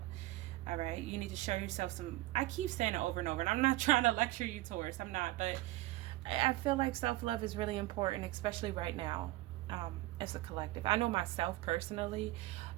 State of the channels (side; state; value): left; quieter; 18.1 dB